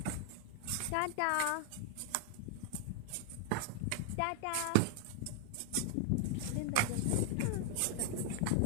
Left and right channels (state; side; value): different; both; correlation 0.00